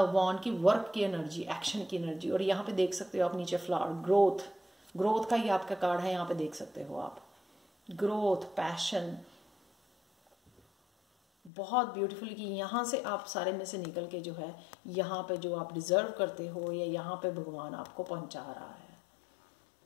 की वर्क की एनर्जी, एक्शन की एनर्जी। और यहाँ पे देख सकते हो आप नीचे फ्लावर, ग्रोथ, ग्रोथ का ही आपका कार्ड है, यहाँ पे देख सकते हो आप, ग्रोथ, पैशन, बहुत ब्यूटीफुल कि यहाँ से आप सारे में से निकल के जो है यहाँ पे जो आप डिजर्व करते हो, या यहाँ पे भगवान आपको पहुंचा रहा है।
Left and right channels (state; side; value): drops out; right; at 11.5 s